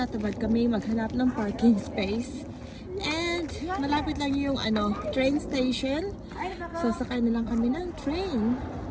kami maghanap ng parking space and malapit lang yung train station, so sakay na lang kami ng train.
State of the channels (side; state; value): both; identical; correlation 1.00